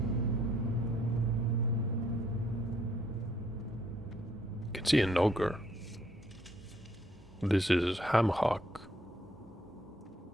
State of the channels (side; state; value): both; normal; correlation 0.67